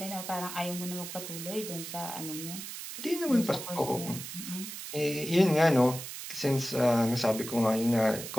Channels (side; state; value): right; noise; hiss, 9 dB below the sound